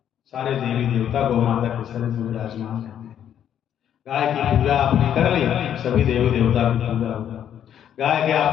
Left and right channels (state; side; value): quieter; right; 9.8 dB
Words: सारे देवी देवता गौ माता के शरीर में विराजमान रहते हैं। गाय की पूजा आपने कर ली, सभी देवी देवता की पूजा होगा। गाय के